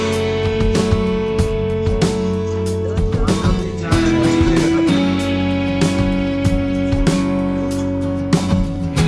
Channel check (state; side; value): identical; both; correlation 1.00